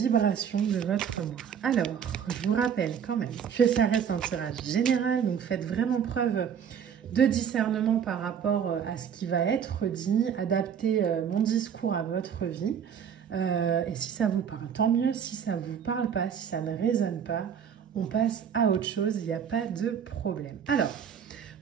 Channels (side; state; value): left; quieter; 7.9 dB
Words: de votre mois. Alors, je vous rappelle quand même que ça reste un tirage général, donc faites vraiment preuve de discernement par rapport à ce qui va être dit, adaptez mon discours à votre vie. Et si ça vous parle, tant mieux. Si ça ne vous parle pas, si ça ne résonne pas, on passe à autre chose, il n'y a pas de problème. Alors,